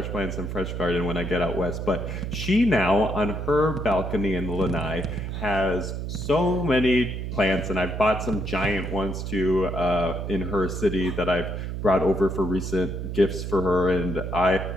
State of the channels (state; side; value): noise; right; hum, 5 dB below the sound